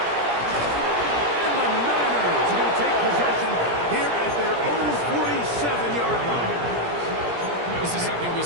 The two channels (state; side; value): late; left; 17 ms